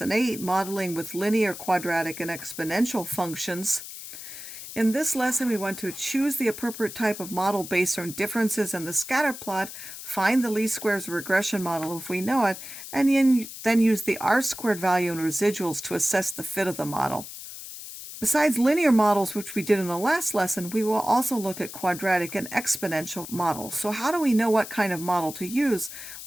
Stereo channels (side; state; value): left; noise; hiss, 11 dB below the sound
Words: 8 Modeling with Linear, Quadratic, and Exponential Functions. In this lesson we want to choose the appropriate type of model based on differences in the scatter plot, find the least squares regression model if we know it, and then use the r-squared value and residuals to assess the fit of the model. Besides linear models, which we did in the last lesson, we will also look at quadratic and exponential models. So how do we know what kind of model to use?